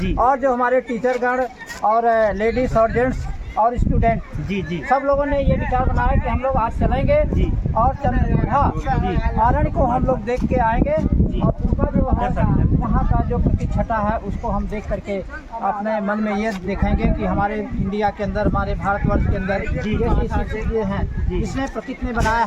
और जो हमारे टीचरगण और लेडीज और जेंट्स और स्टूडेंट जी जी सब लोगों ने ये विचार बनाया कि हम लोग आज चलेंगे जी और चंद्रभागा आरण को हम लोग देख के आएंगे और उनका जो है वहाँ का जो प्रतिष्ठा है उसको हम देख करके अपने मन में ये देखेंगे कि हमारे इंडिया के अंदर, हमारे भारतवर्ष के अंदर ये चीज़ें हैं इसने प्रकृति ने बनाया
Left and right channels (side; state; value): both; identical; correlation 1.00